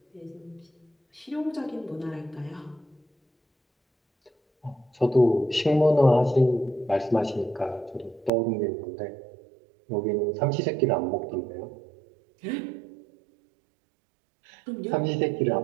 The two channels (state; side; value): drops out; left; at 8.3 s